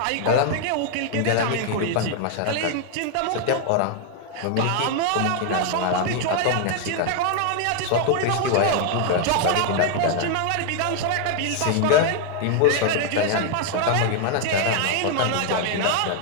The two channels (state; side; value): different; both; correlation 0.00